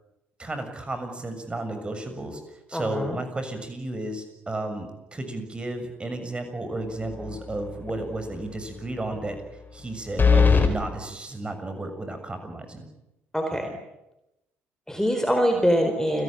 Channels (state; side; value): normal; both; correlation 0.85